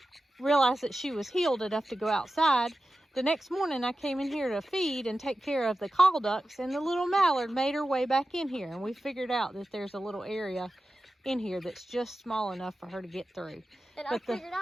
realized that she was healed enough to go outside. The next morning I came in here to feed and take care of the call ducks, and the little mallard made her way back in here. And we figured out that there's a little area in here that's just small enough for her to get through. And I figured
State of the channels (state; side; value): normal; both; correlation 0.93